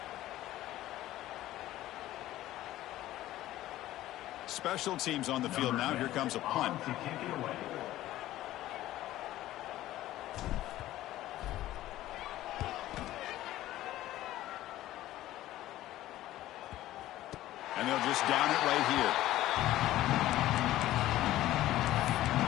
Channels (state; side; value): quieter; right; 14.8 dB